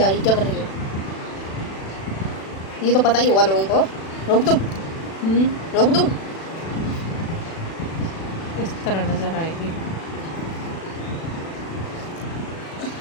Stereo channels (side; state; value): right; late; 36 ms